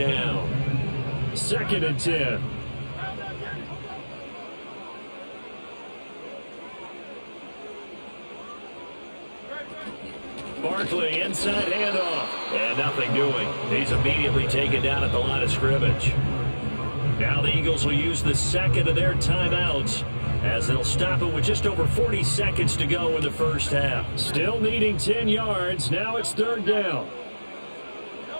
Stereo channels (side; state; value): both; inverted; correlation -1.00